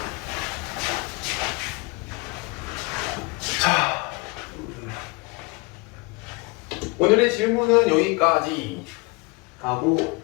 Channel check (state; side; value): quieter; right; 27.7 dB